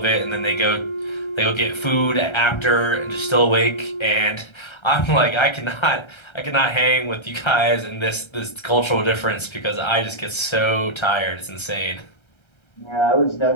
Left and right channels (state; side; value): late; right; 1.3 ms